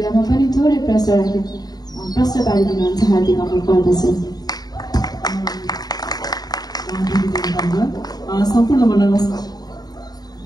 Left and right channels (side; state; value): right; late; 0.19 ms